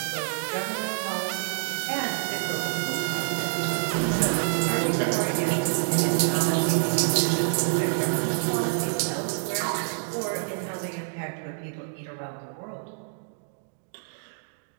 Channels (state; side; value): silent; left; digital silence